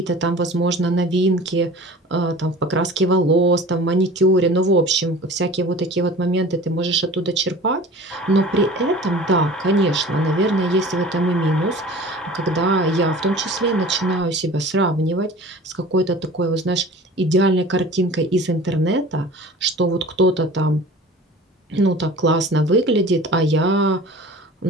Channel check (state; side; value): normal; both; correlation 0.41